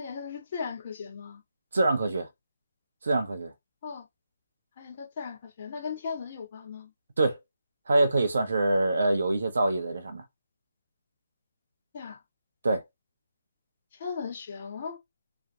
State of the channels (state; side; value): inverted; both; correlation -0.86